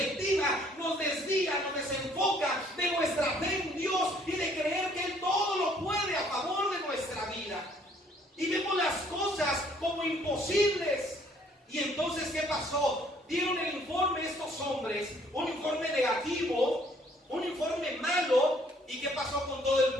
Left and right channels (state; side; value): normal; both; correlation 0.62